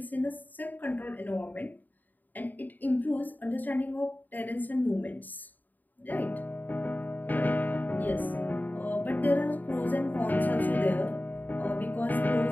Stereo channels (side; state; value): right; late; 0.085 ms